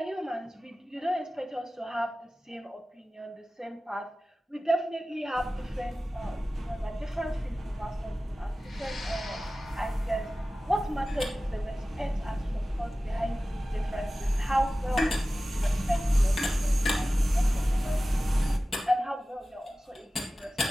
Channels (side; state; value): both; normal; correlation 0.96